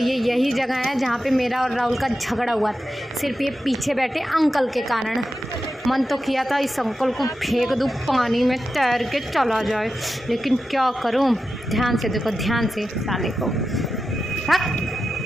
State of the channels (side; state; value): both; normal; correlation 0.91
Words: यही जगह है जहाँ पे मेरा और राहुल का झगड़ा हुआ था, सिर्फ ये पीछे बैठे अंकल के कारण। मन तो किया था इस अंकल को फेंक दूँ पानी में, तैर के चला जाए, लेकिन क्या करूँ। ध्यान से देखो, ध्यान से साले को। हाँ